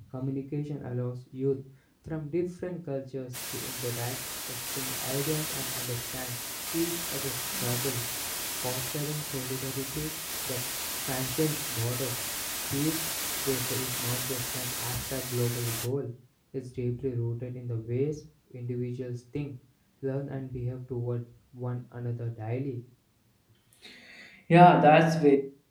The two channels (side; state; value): both; identical; correlation 1.00